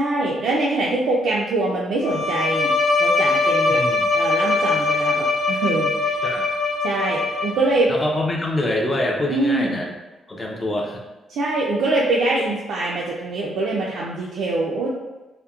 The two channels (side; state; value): both; normal; correlation 0.68